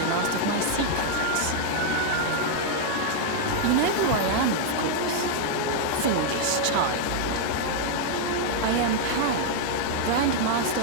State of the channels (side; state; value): both; different; correlation 0.00